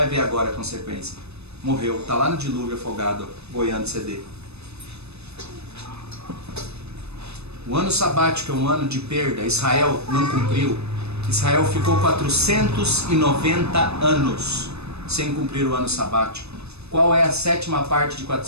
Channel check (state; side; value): late; left; 0.80 ms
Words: ver agora a consequência. Morreu, está lá no dilúvio afogado, boiando CD. O ano sabático é um ano de perda. Israel não cumpriu. Israel ficou 490 anos sem cumprir o ano sabático. Qual é a sétima parte de